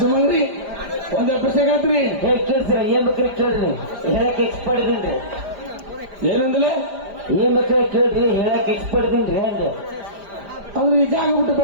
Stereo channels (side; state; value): left; late; 5.0 ms